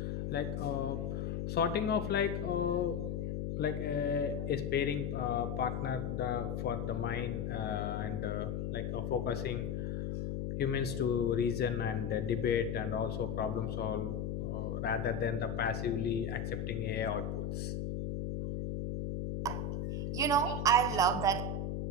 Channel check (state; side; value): noise; left; hum, 2 dB below the sound